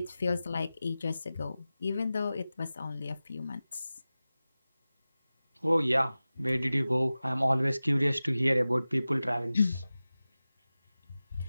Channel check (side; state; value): both; inverted; correlation -0.96